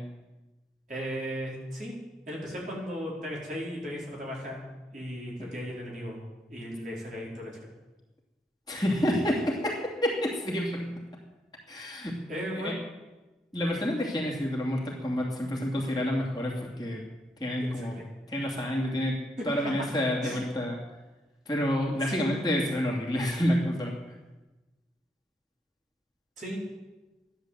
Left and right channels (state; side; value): normal; both; correlation 0.77